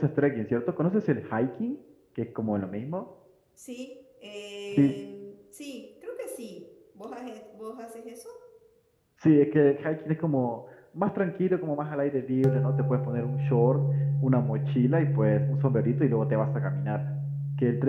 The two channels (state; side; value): identical; both; correlation 1.00